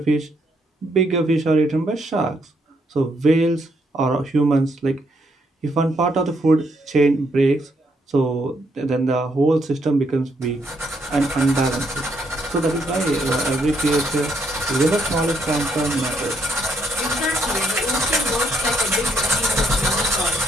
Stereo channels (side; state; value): both; normal; correlation 0.73